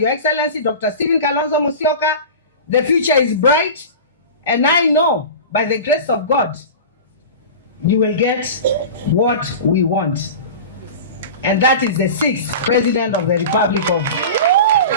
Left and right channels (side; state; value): both; inverted; correlation -0.32